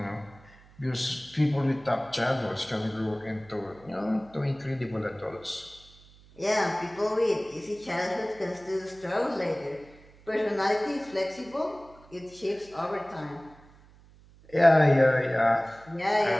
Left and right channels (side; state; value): right; noise; hum, 25 dB below the sound